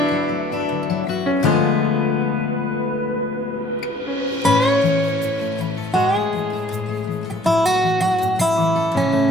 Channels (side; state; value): both; normal; correlation 0.56